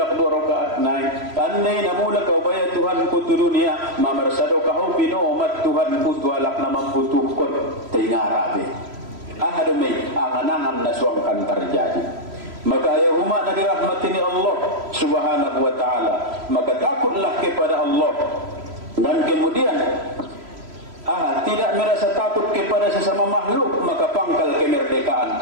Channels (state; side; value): late; left; 3.0 ms